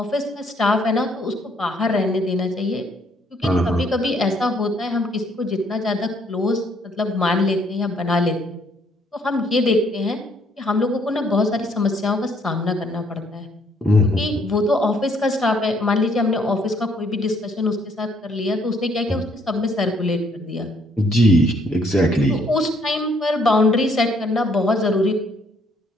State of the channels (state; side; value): normal; both; correlation 0.67